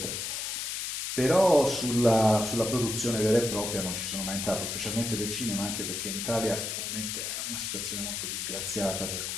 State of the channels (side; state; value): left; noise; hiss, 3 dB below the sound